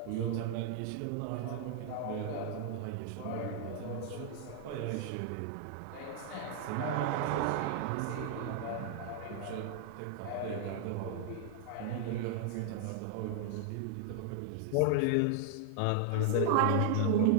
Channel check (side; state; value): both; different; correlation -0.01